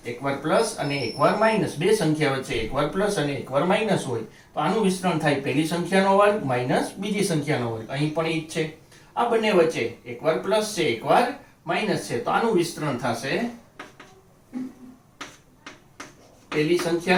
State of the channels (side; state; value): both; identical; correlation 1.00